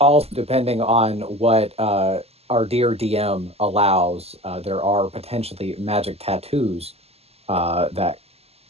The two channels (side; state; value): left; late; 0.29 ms